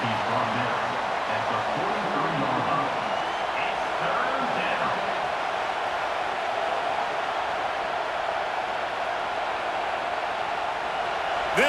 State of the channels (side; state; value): both; identical; correlation 1.00